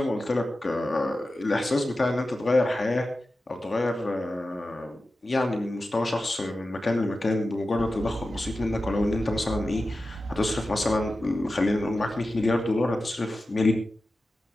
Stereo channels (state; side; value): normal; both; correlation 0.93